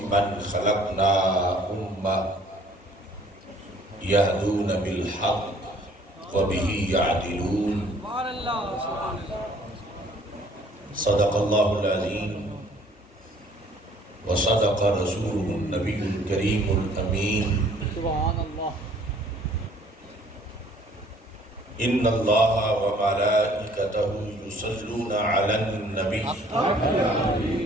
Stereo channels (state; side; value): normal; both; correlation 0.57